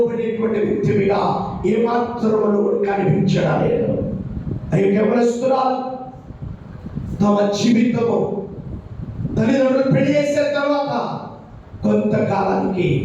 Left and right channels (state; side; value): identical; both; correlation 1.00